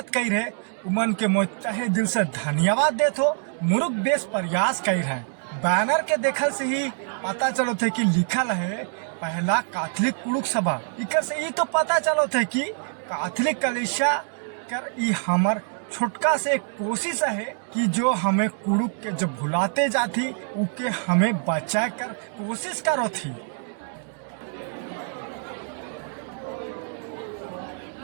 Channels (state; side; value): silent; left; 57 dB below the other